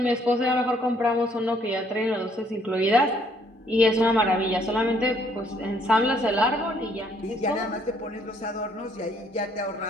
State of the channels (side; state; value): both; normal; correlation 0.66